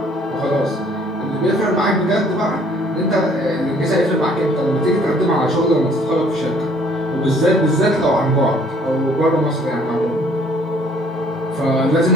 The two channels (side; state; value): both; normal; correlation 0.59